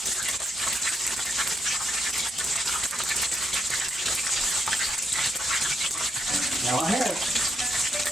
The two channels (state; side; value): noise; right; hum, 29 dB below the sound